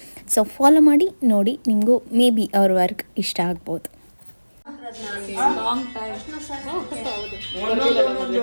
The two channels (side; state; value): both; inverted; correlation -1.00